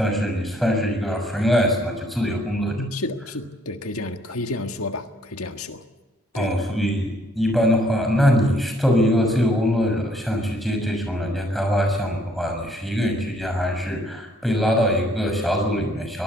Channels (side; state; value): both; normal; correlation 0.65